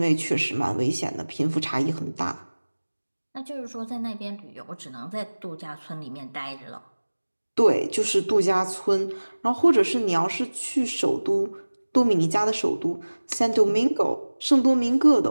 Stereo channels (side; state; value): both; inverted; correlation -1.00